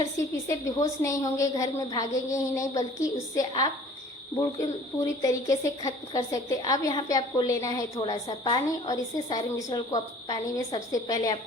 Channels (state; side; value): normal; both; correlation 0.50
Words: सिर्फ इसे बेहोश नहीं होंगे, घर में भागेंगे ही नहीं, बल्कि उससे आप बिल्कुल पूरी तरीके से खत्म कर सकते हैं। अब यहाँ पे आपको लेना है थोड़ा सा पानी और इसे सारे मिश्रण को पानी में सबसे पहले